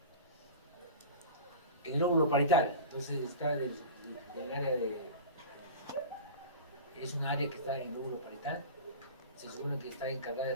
El lóbulo parietal, entonces está del área de... Es un área que está en el lóbulo parietal. Se supone que está encargada de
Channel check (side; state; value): both; inverted; correlation -0.33